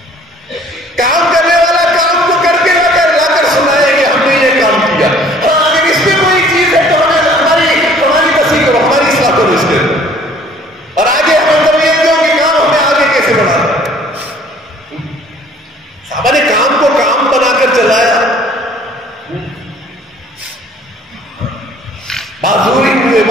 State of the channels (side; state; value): both; normal; correlation 0.55